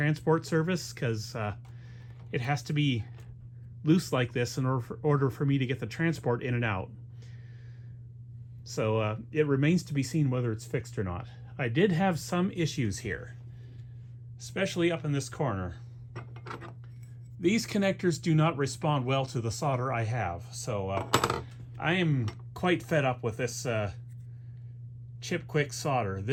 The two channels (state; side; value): identical; both; correlation 1.00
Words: service, because it has to be loose like this in order for me to get the transport in and out. So it remains to be seen whether it's fixed or not. I did have some issues here, especially up in this corner. These connectors do not respond well to the solder I have, so I am quite fed up with this chip quick solder.